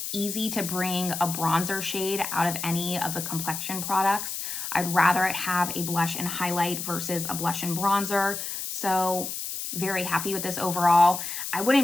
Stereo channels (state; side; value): noise; left; hiss, 5 dB below the sound